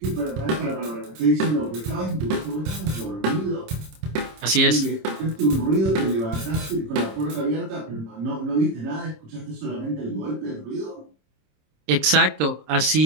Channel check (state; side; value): late; left; 26 ms